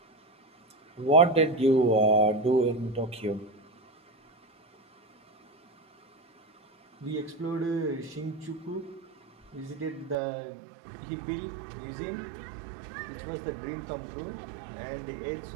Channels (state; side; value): drops out; left; at 10.2 s